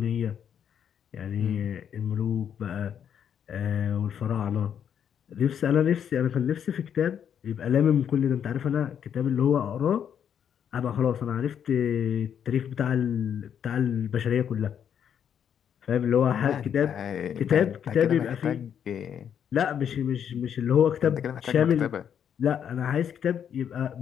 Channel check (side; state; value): right; quieter; 8.6 dB